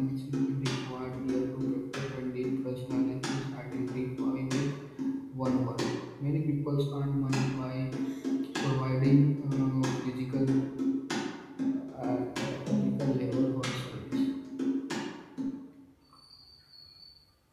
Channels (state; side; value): identical; both; correlation 1.00